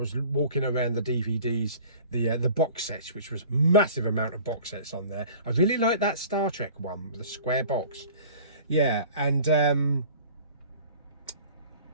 walking around the DVDs, the box sets, which was massive amount of box sets on there. I really like that Star Trek one, the square box. Yeah, and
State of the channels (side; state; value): both; inverted; correlation -0.45